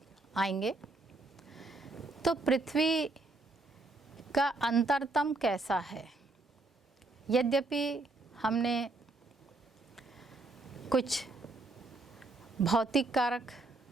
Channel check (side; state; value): left; quieter; 3.1 dB